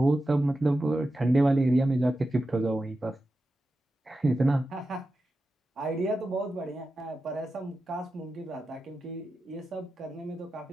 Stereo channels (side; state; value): both; normal; correlation 0.91